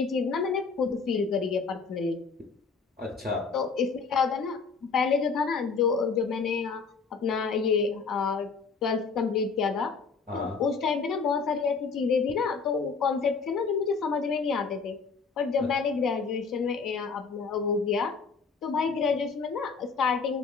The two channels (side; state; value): right; quieter; 5.0 dB